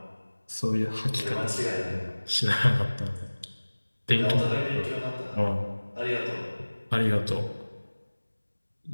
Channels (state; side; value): inverted; both; correlation -1.00